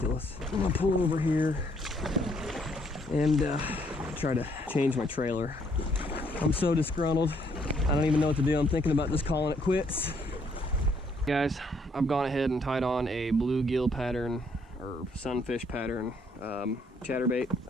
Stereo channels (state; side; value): normal; both; correlation 0.68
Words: I'm gonna pull over here and try to change my trailer. I'm so disgruntled. I don't even know what to do. I'm thinking about just calling it quits. Guys, I've gone ahead and tied on a bluegill pattern or sunfish pattern chatterbait,